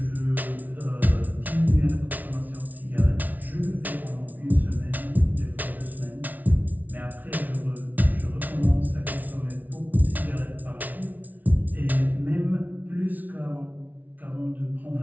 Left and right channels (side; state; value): left; late; 0.078 ms